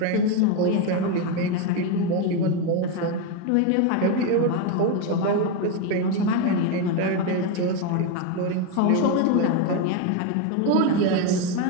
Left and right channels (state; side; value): different; both; correlation 0.03